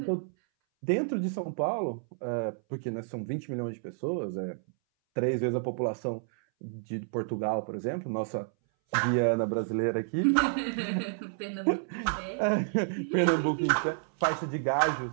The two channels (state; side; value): silent; left; 58 dB below the other